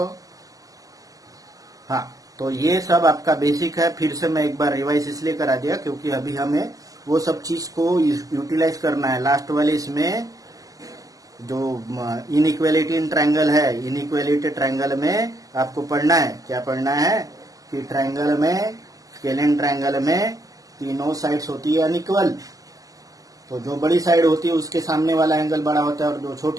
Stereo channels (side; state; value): left; late; 0.17 ms